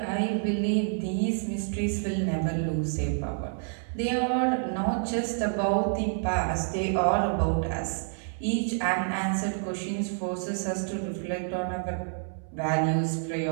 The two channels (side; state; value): left; silent; 59 dB below the other